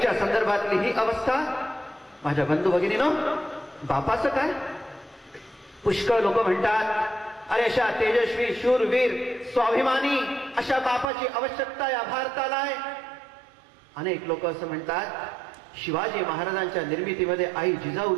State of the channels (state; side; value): drops out; left; at 11.1 s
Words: संदर्भातली ही अवस्था. माझ्या बंधू भगिनीनो, बापाचं काय? पुष्कळ लोक म्हणतात, अरे अशा तेजस्वी, शूरवीर, स्वाभिमानी अशा बापाची आवश्यकता या भारताला आहे. अनेक लोक असं म्हणतात, शिवाजी महाराजांच्या निर्मितीमध्ये आई